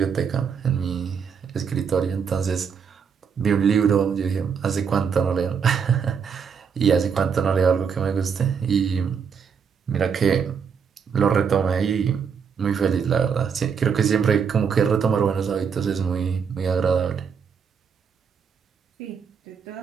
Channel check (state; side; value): quieter; left; 6.6 dB